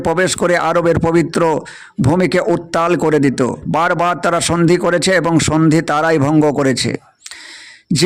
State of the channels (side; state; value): both; identical; correlation 1.00